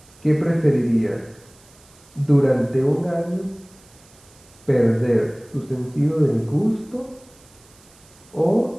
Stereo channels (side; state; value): right; noise; hiss, 27 dB below the sound